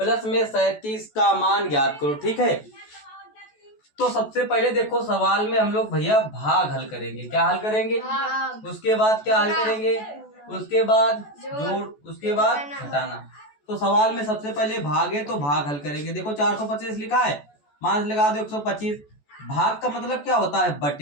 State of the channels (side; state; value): right; late; 14 ms